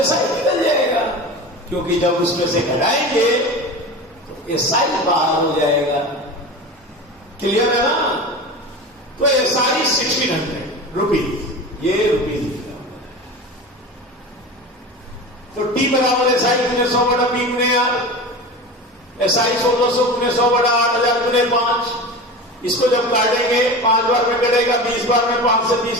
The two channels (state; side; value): normal; both; correlation 0.30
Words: SI निकल जाएगा, क्योंकि जब उसमें से घटाएंगे SI बाहर हो जाएगा। क्लियर है ना? तो SI 1600 रुपीज, ये रुपीज लिखा हुआ है। तो T बराबर SI गुने 100 बटा P गुने R, SI 1600 गुने 100 बटा 8000 गुने 5। इसको जब काटेंगे 5 बार में कटेगा, 20 बार में 5 से 20